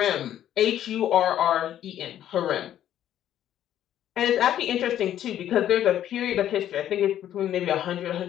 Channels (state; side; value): quieter; right; 11.3 dB